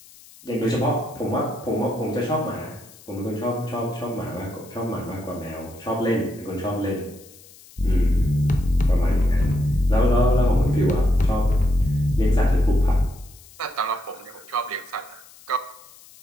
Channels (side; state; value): left; noise; hiss, 23 dB below the sound